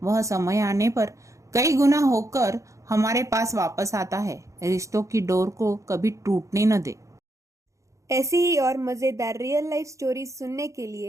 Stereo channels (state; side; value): late; left; 0.15 ms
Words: वह समय आने पर कई गुना होकर हमारे पास वापस आता है। रिश्तों की डोर को कभी टूटने न दे। ऐसी ही और मज़ेदार रियल लाइफ स्टोरीज सुनने के